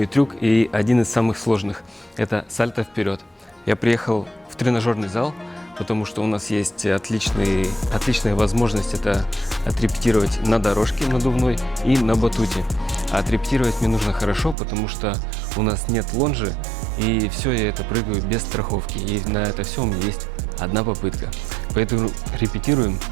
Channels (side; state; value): left; drops out; at 14.6 s